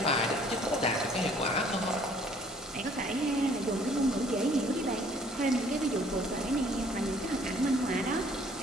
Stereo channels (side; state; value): both; normal; correlation 0.58